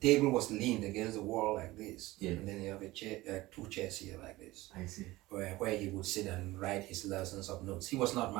was leaned against the wall like this. And then you have a chair, 2 chairs here like this. I see. Where he would sit and write his lessons of notes. He was not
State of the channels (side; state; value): left; quieter; 18.8 dB